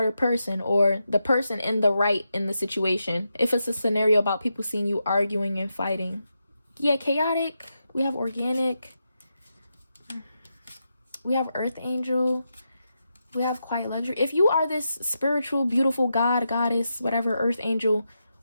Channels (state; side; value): inverted; both; correlation -0.86